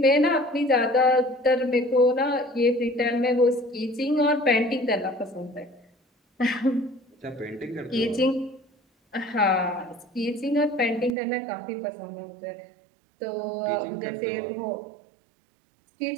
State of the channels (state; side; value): drops out; left; at 11.2 s